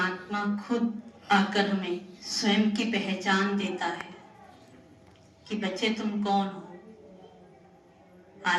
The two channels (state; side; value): identical; both; correlation 1.00